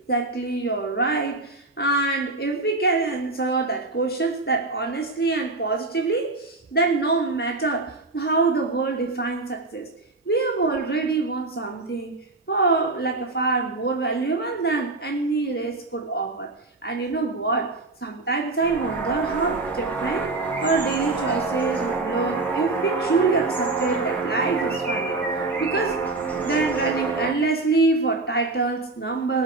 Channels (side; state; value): left; quieter; 3.2 dB